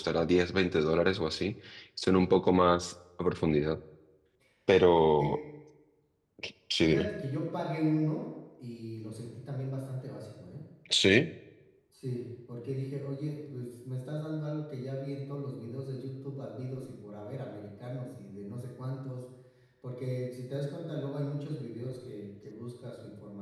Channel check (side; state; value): both; identical; correlation 1.00